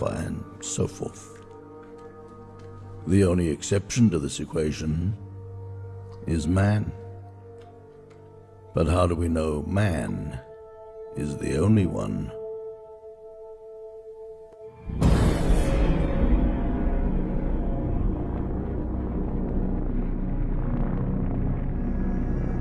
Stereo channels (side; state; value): both; identical; correlation 1.00